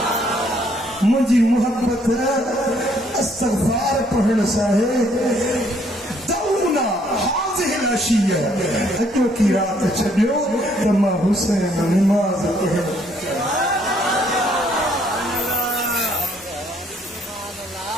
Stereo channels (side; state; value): both; normal; correlation 0.66